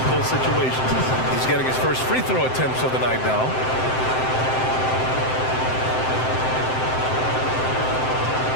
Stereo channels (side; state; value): right; late; 7.7 ms